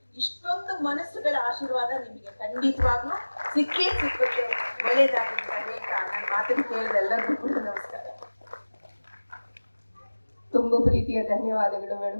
ಇಷ್ಟೊಂದು ಮನಸ್ಸುಗಳ ಆಶೀರ್ವಾದ ನಿಮಗೆ ಖಂಡಿತವಾಗ್ಲೂ ಸಿಕ್ಕುತ್ತೆ. ಒಳ್ಳೇದಾಗಲಿ ಅಂತ ಹೇಳ್ತಾ ನನ್ನ ಮಾತನ್ನು ಕೇಳಿದ ಎಲ್ಲರಿಗೂ ಕೂಡ ನಮಸ್ಕಾರ. ತುಂಬಾ ಪ್ರೀತಿಯ ಧನ್ಯವಾದಗಳು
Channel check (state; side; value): inverted; both; correlation -1.00